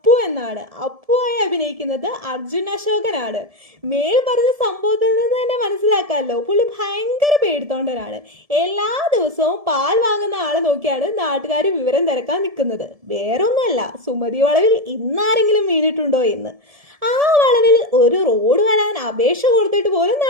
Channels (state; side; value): late; left; 1.7 ms